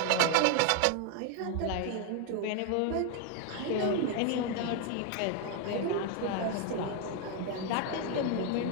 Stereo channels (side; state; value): both; different; correlation 0.01